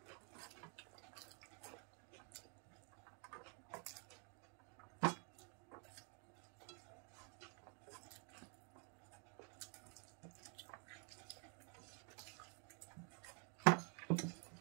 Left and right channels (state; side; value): quieter; left; 38.2 dB